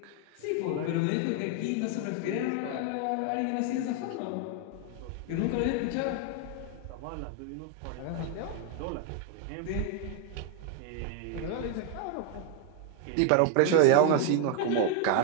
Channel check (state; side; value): different; both; correlation 0.01